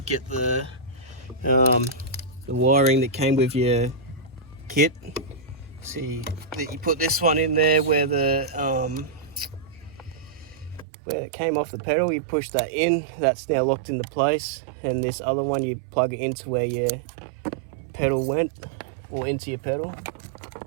get the wiring that came with your kit. See that you put this one in there where it came off the pedal, you push that in, that's now locked into place, and this other one you plug it into where your pedal went, or into your pedal.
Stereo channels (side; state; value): left; drops out; at 10.9 s